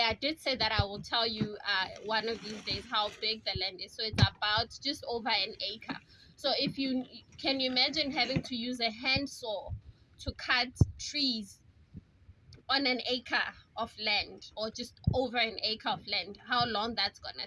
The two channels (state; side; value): identical; both; correlation 1.00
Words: did say that I will tell you one of these days how big the land is. So it's about just over an acre. So if you can, you imagine having to use a handsaw to cut trees on an acre of land, or just over an acre of land, how long that's